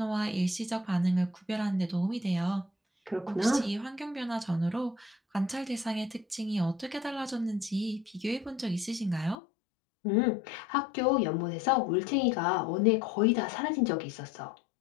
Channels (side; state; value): right; drops out; at 9.3 s